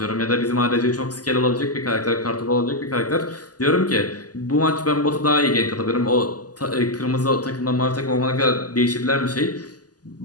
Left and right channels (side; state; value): right; late; 0.68 ms